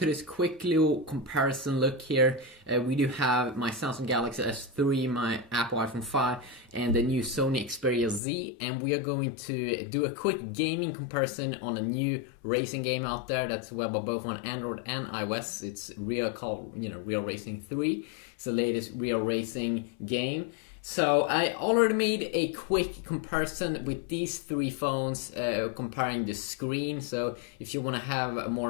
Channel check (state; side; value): drops out; right; at 8.2 s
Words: this quick little comparison look here. We do have my Samsung Galaxy S3, my Apple iPhone 5, and the new Sony Xperia Z, and we are going to do a quick gaming comparison on a new racing game out there that's available both on Android and iOS. It's Real Racing 3. It's the latest real racing game. So I already made a quick comparison with these three phones, comparing the screen. So if you want to have a